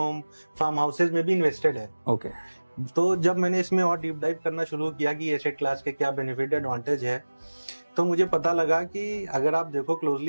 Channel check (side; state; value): both; inverted; correlation -1.00